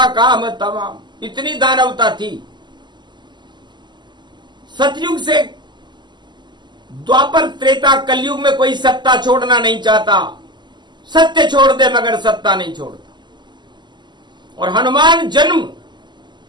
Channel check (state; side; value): late; left; 0.21 ms